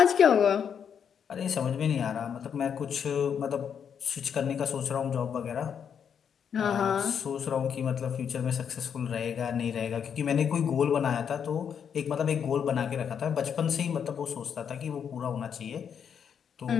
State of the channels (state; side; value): quieter; right; 7.7 dB